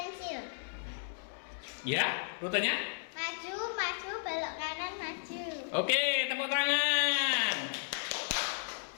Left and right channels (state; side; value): silent; right; 55 dB below the other